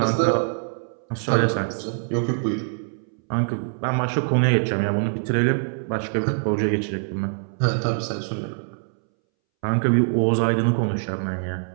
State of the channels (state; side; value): silent; left; 63 dB below the other